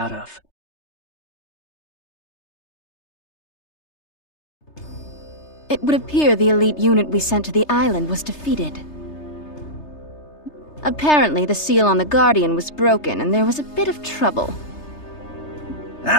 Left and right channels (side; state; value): right; late; 3.3 ms